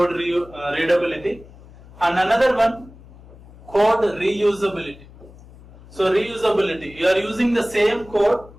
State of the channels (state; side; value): noise; left; hum, 21 dB below the sound